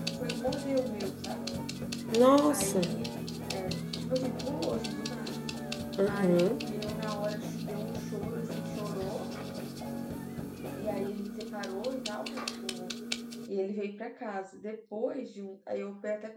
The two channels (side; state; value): both; identical; correlation 1.00